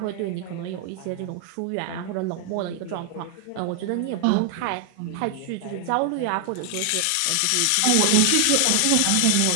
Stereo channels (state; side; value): different; both; correlation 0.00